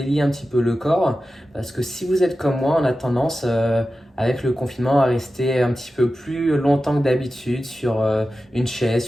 un petit peu le corps, parce que si vous êtes comme moi, on a tendance avec le confinement à rester un petit peu plus longtemps que d'habitude sur une chaise,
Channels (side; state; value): both; normal; correlation 0.93